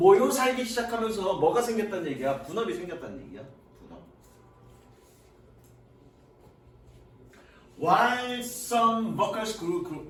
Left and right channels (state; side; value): identical; both; correlation 1.00